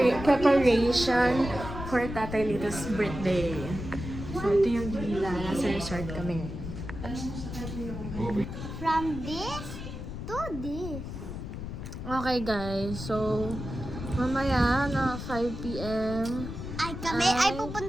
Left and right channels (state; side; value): noise; left; rumble, 8 dB below the sound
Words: preparation for Tatay Lito's birthday. So ito yung villa, nasa resort kami ngayon. From this to this. Okay guys, so mamaya na 5 p.m. Ay